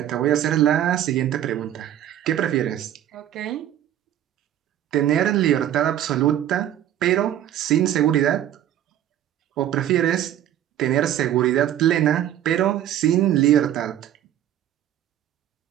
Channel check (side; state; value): left; quieter; 11.6 dB